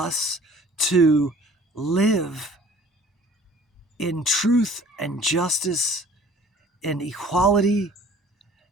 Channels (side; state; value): both; normal; correlation 0.51